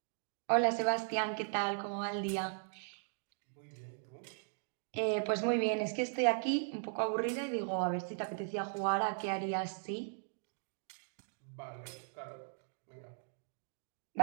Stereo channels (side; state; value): left; silent; digital silence